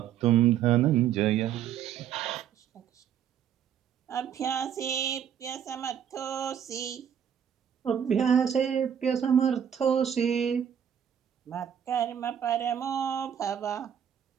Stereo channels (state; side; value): quieter; left; 9.0 dB